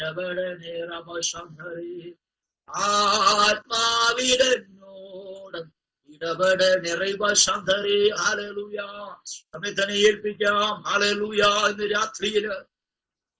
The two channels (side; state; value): both; identical; correlation 1.00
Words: റമശധരേ, ആത്മാവിലെന്നോട് ഇടപെടണേ. റൈബശധരേ. ഹല്ലേലൂയ. നമ്മെ തന്നെ ഏൽപ്പിക്കാം. ഹല്ലേലൂയ. ഇന്ന് രാത്രിയില്